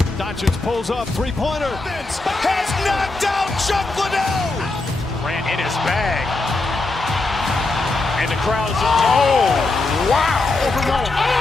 Doncic pulls up, three-pointer. Has knocked out Chuck Liddell. Ran in his bag. And the crowd is... Oh, wow.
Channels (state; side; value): quieter; right; 3.3 dB